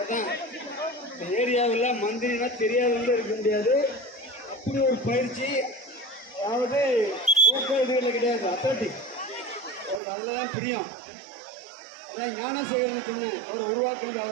தான். இந்த ஏரியாவில் மந்திரினா தெரியாதவங்க இருக்க முடியாது. அப்படி ஒரு பயிற்சி, அதாவது ஓட்ட இதுகளில் கிடையாது, அத்லட்டிக் அவருக்கு அதில் தான் பிரியம். அதான் ஞானசேகரன் சொன்னேன், அவரை உருவாக்குறது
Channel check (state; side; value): drops out; left; at 10.0 s